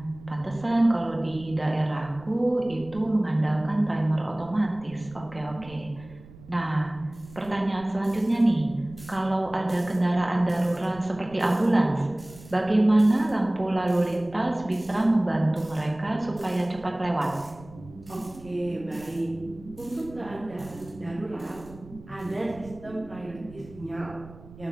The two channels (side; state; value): right; noise; rumble, 19 dB below the sound